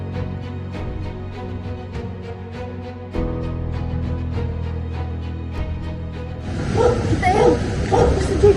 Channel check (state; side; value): identical; both; correlation 1.00